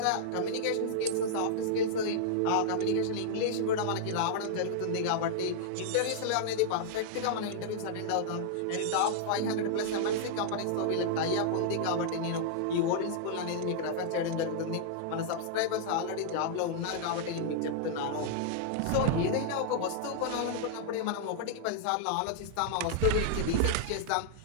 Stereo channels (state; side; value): different; both; correlation -0.01